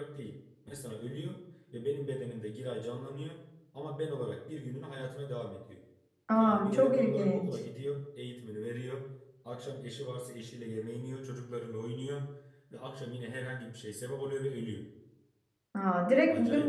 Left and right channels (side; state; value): both; identical; correlation 1.00